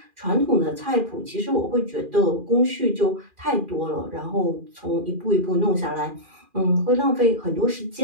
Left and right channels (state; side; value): late; left; 2.4 ms